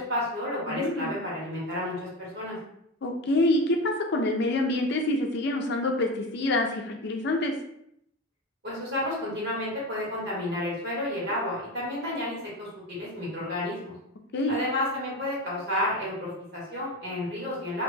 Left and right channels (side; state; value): both; normal; correlation 0.23